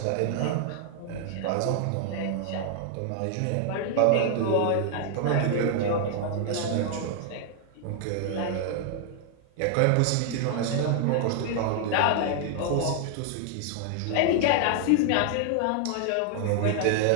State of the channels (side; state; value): both; different; correlation 0.00